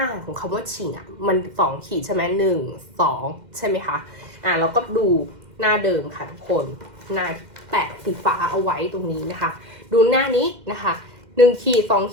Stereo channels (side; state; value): left; late; 2.1 ms